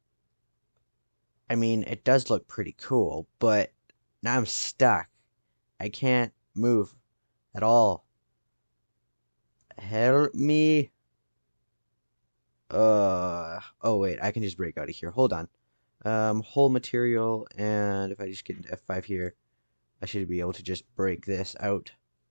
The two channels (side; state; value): both; inverted; correlation -1.00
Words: I mean, it does look pretty cool, but now I'm stuck. I can't move at all. Help me. Oh wait, I can just break out of here. Hold on. Whole material, and if I just get into F5 here, I should be able to just break this out.